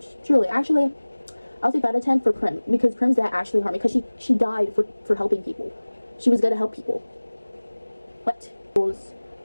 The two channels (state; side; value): inverted; both; correlation -1.00